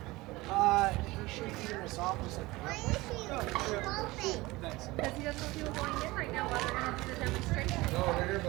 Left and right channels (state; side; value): quieter; left; 20.6 dB